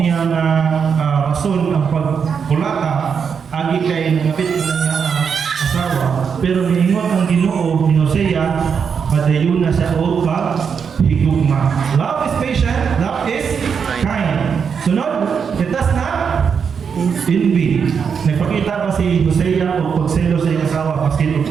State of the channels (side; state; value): left; quieter; 6.6 dB